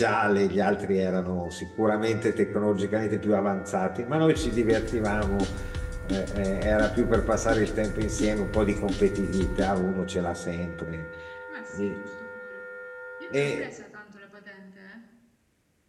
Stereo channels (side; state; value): both; identical; correlation 1.00